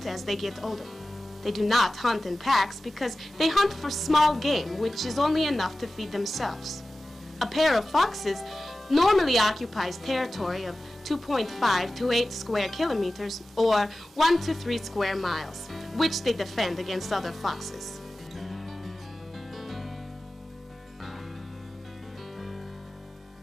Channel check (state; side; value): normal; both; correlation 0.95